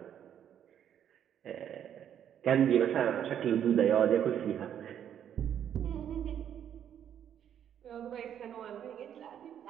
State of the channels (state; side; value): quieter; left; 9.5 dB